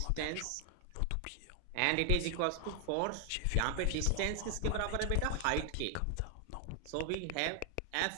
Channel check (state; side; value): different; both; correlation 0.00